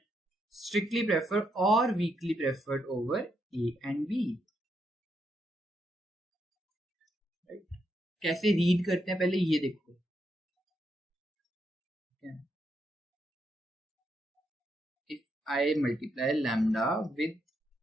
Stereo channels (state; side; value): normal; both; correlation 0.79